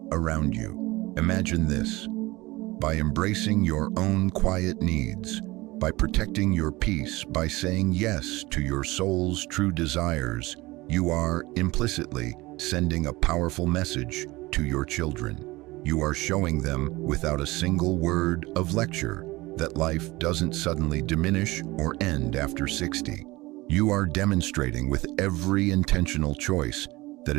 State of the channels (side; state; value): left; quieter; 20.9 dB